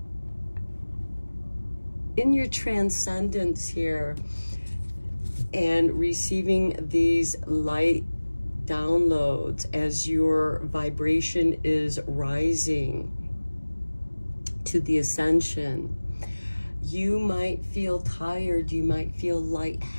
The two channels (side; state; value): both; inverted; correlation -1.00